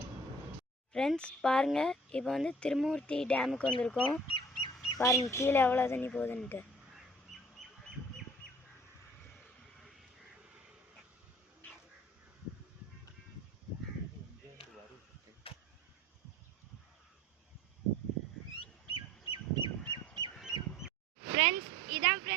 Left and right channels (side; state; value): both; normal; correlation 0.50